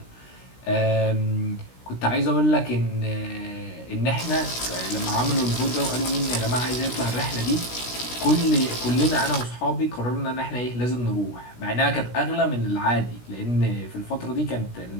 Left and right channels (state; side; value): late; right; 16 ms